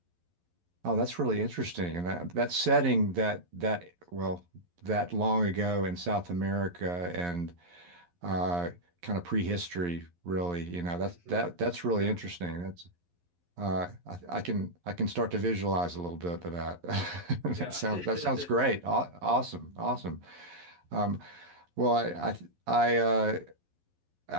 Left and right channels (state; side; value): late; left; 11 ms